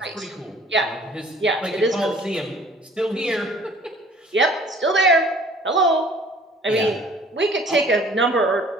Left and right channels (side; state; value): both; normal; correlation 0.52